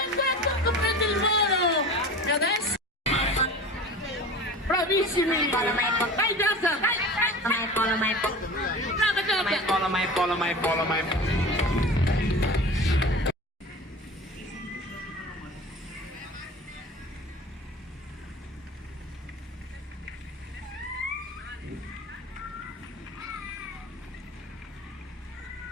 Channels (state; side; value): normal; both; correlation 0.36